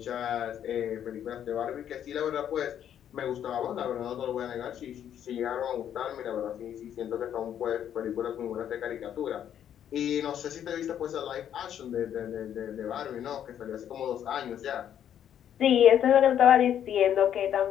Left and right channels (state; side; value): quieter; right; 9.8 dB